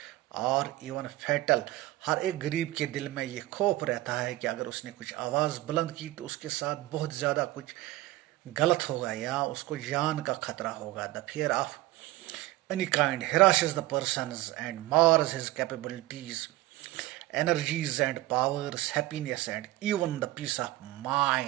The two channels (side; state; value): left; quieter; 17.4 dB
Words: or even fatal. ہر ایک غریب کے دل میں یہ خوف رہتا ہے کہ اگر اس نے کچھ آواز بلند کی تو اس کے ساتھ بہت زیادہ کچھ غلط ہوگا یا اس کو جان کا خطرہ ہوگا. the fear of any kind harasses the persons and mars his capabilities, energies and powers, happiness and even the peace of